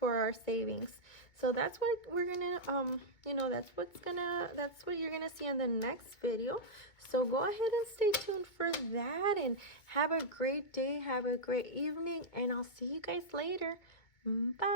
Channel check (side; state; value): right; late; 2.2 ms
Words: our savings. So that's what we're gonna you know, that's what you're gonna see in the next video. So go ahead and stay tuned for that, and have a great day, have a great evening, and I'll see you guys later.